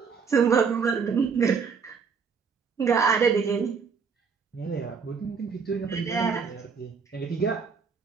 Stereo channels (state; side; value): quieter; left; 5.8 dB